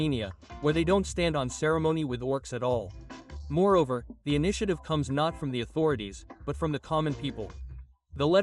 where they don't stand on ceremony with orcs at all. Moreover, the initiative comes not from the authorities, but from the common people. The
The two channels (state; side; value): identical; both; correlation 1.00